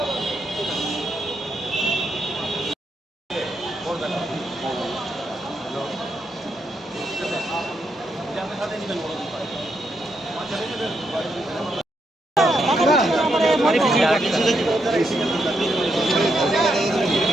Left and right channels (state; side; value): normal; both; correlation 0.81